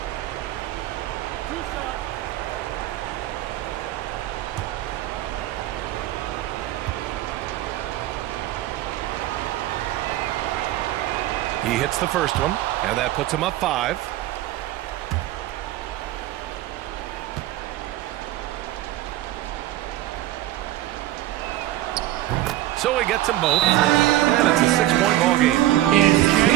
He hits the first one, and that puts him up 5. So he gets them both, and it's a 6-point ball game.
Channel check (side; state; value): left; quieter; 14.6 dB